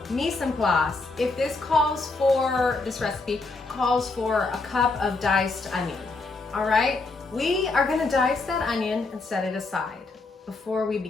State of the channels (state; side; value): quieter; right; 3.6 dB